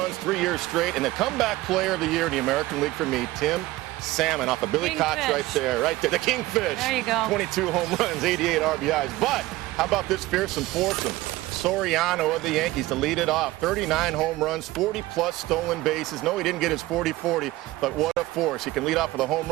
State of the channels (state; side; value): quieter; left; 18.0 dB